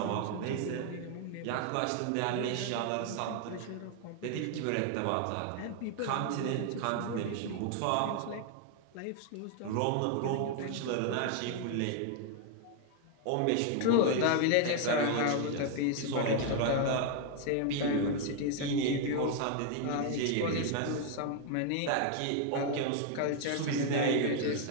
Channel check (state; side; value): different; both; correlation 0.00